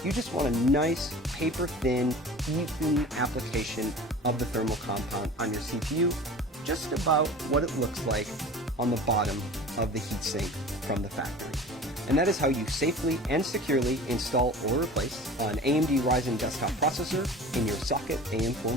You just want a nice, paper-thin, even application of the thermal compound on your CPU, just about what it looks like on the bottom of the heatsink from the factory. And that is how you safely and securely install or replace an AMD Ryzen desktop processor in your socket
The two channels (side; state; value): both; normal; correlation 0.39